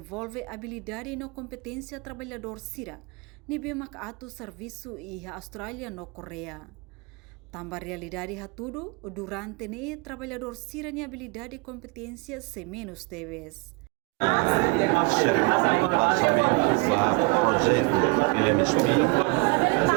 habilidade e competência trabalhador Sira, nibe atu serviço e a Austrália no Coreia. Tambah realidade tudo, durante trabalhador Sira ni habilidade e competência se menos TEBES. Cerimônia lançamento do projeto PMSP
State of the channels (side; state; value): left; quieter; 28.3 dB